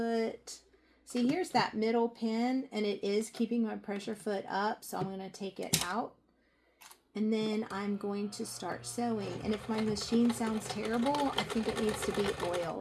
See, here's that middle pin, and it is keeping my pressure foot up, so I'm going to take it out. And then I'm going to start sewing. And if my machine sounds terrible, I think it needs to be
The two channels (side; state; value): both; identical; correlation 1.00